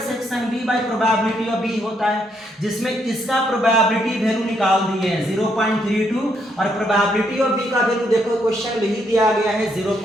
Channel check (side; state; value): both; normal; correlation 0.74